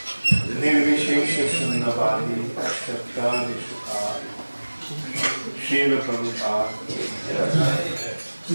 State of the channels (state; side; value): inverted; both; correlation -1.00